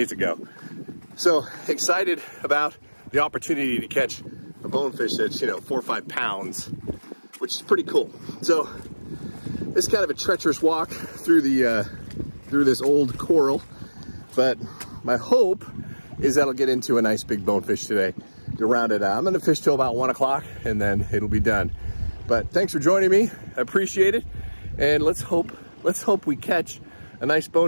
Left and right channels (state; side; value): inverted; both; correlation -1.00